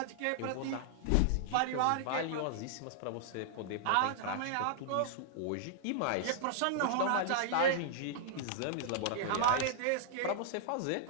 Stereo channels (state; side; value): different; both; correlation -0.01